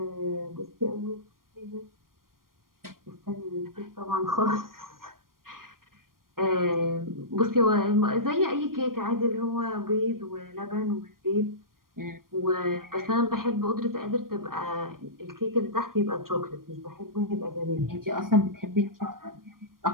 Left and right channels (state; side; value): late; left; 0.91 ms